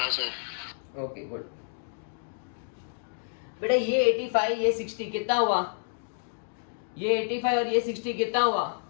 सर। ओके गुड बेटा। ये 85 ये 60 कितना हुआ? ये 85 और ये 60 कितना हुआ?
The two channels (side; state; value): right; silent; digital silence